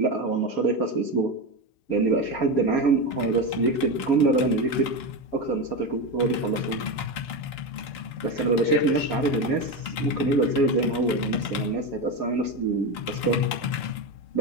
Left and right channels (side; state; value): right; late; 6.7 ms